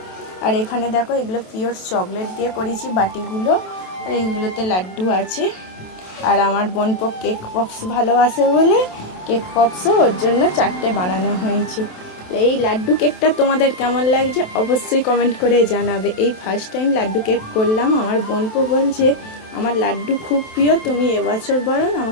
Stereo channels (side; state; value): right; late; 27 ms